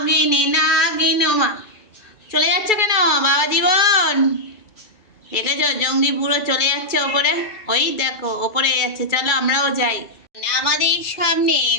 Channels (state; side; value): late; right; 2.3 ms